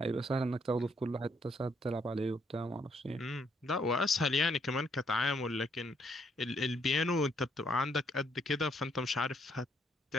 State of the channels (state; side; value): normal; both; correlation 0.71